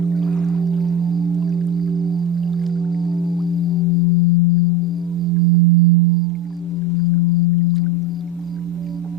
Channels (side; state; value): both; normal; correlation 0.22